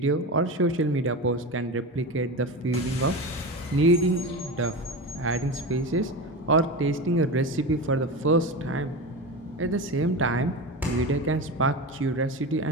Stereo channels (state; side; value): normal; both; correlation 0.24